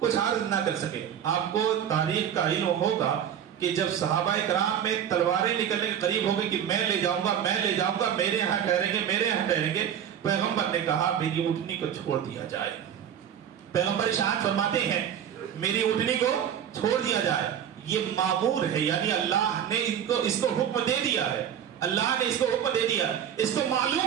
عرض نہ کر سکے. آپ کو تاریخ کا علم ہوگا کہ جب صحابہ کرام میں تلواریں نکلنے کے قریب ہو گئی کہ میں لے جاؤں گا، میں لے جاؤں گا، میرے یہاں ٹھہریں گے، میرے یہاں ٹھہریں گے، پیغمبر نے کہا میری اونٹنی کو چھوڑ دیا جائے. پیغمبر ارشاد فرماتے ہیں میری اونٹنی کو چھوڑ دیا جائے. یہ معمور ہے، یعنی اللہ نے اس کو حکم دے دیا ہے، اللہ نے اس کو حکم دے دیا. اس کو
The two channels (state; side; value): quieter; left; 9.2 dB